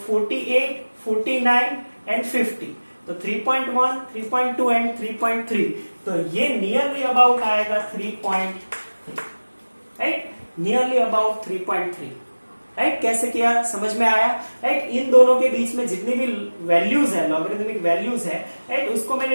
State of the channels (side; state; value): both; inverted; correlation -1.00